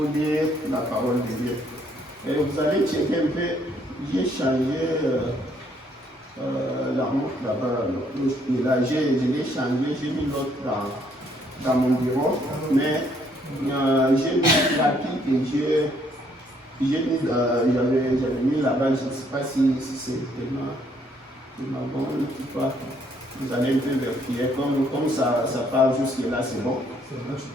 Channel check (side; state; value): both; normal; correlation 0.68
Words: dire la parole de Dieu. Et vous allez checker un peu, j'ai changé la montre là-bas. Je l'ai changé, j'ai mis l'autre dans mon bureau, mais j'ai mis la pique et j'avais mis là-bas, je ne sais pas si c'est tellement bon ou pas. Vous allez un peu vérifier, comme ça part jusque là, c'est bon.